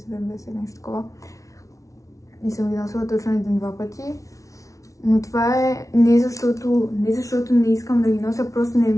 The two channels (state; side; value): late; right; 0.16 ms